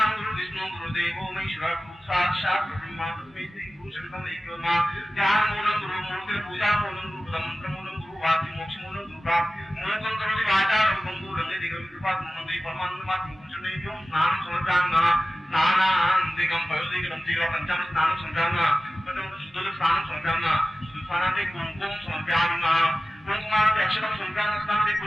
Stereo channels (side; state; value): both; normal; correlation 0.95